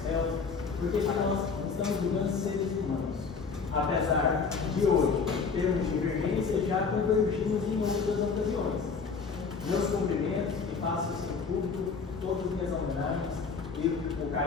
réus, porque nós estamos julgando seres humanos. Apesar de hoje termos divergência, já convergimos em outras ocasiões. Meus cumprimentos e faço isso em público, todas as minhas homenagens e o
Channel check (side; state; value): right; quieter; 5.2 dB